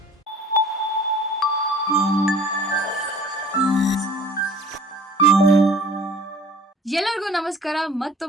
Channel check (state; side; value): normal; both; correlation 0.48